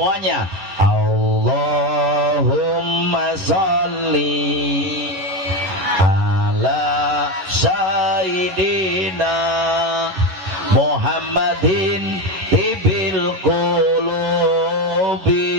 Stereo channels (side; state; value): left; late; 11 ms